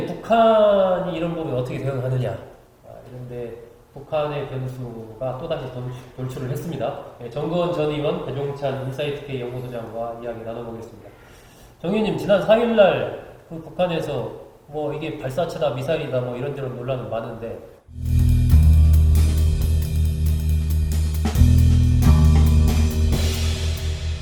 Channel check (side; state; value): both; identical; correlation 1.00